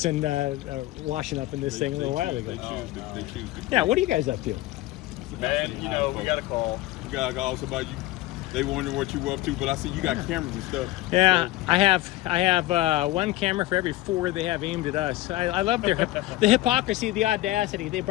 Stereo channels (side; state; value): right; quieter; 17.0 dB